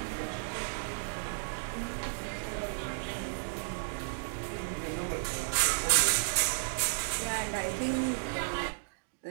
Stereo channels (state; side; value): silent; left; digital silence